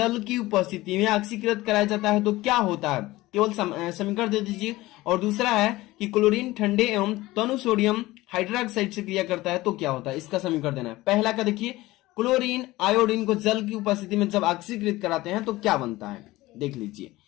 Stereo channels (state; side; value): quieter; right; 18.5 dB